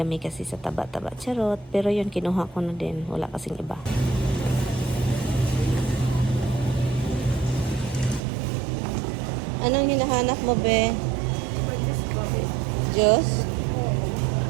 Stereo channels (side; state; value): left; drops out; at 8.2 s